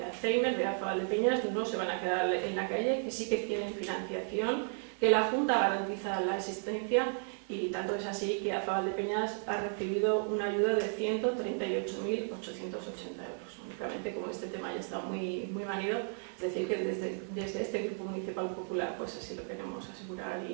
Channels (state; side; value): silent; left; 55 dB below the other